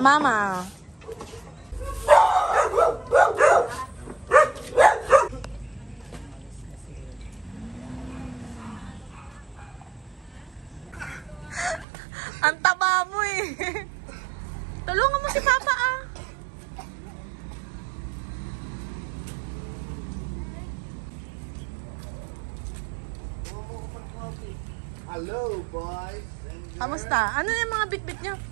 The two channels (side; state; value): left; drops out; at 11.9 s